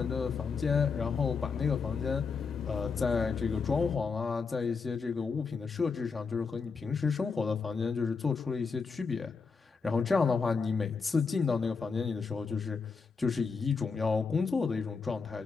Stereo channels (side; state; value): right; quieter; 5.0 dB